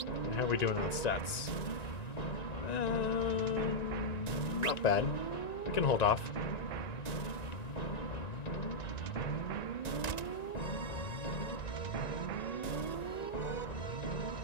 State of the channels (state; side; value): late; right; 1.9 ms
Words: how are we doing on stats? Not bad. We can hold off.